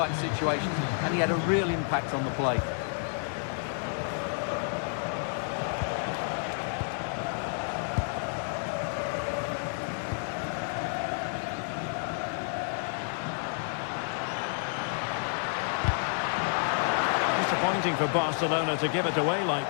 situations, and he had a real impact on the play. Disappointing for Barcelona to give it away like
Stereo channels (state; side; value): silent; right; 58 dB below the other